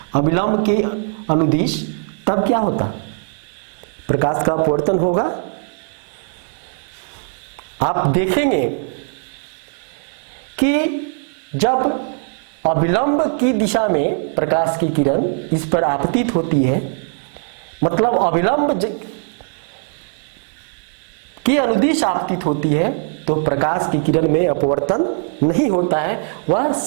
अभिलंब के अनुदिश, तब क्या होता, प्रकाश का अपवर्तन होगा। आप देखेंगे कि जब अभिलंब की दिशा में प्रकाश की किरण इस पर आपतित होती है, मतलब अभिलंब की अनुदिश आपतित होती है, तो प्रकाश की किरण में अपवर्तन नहीं होता है, वह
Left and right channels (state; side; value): silent; left; 58 dB below the other